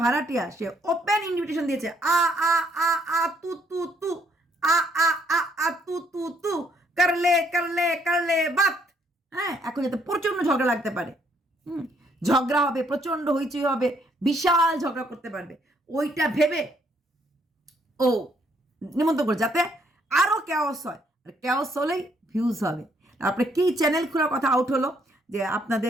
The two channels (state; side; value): normal; both; correlation 0.69